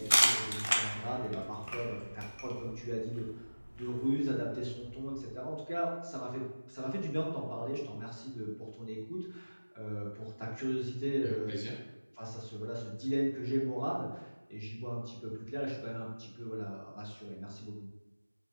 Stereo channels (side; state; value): both; inverted; correlation -1.00